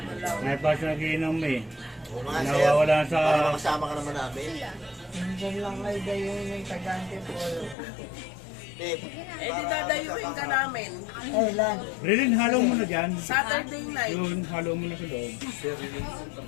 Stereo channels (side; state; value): right; drops out; at 7.8 s